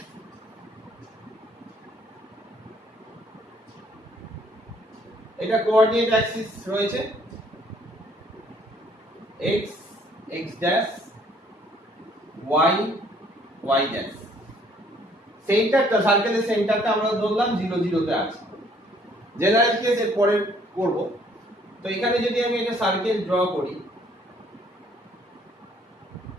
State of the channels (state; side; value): normal; both; correlation 0.62